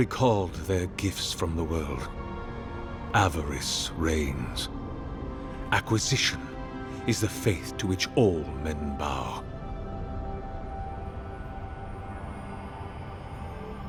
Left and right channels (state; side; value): identical; both; correlation 1.00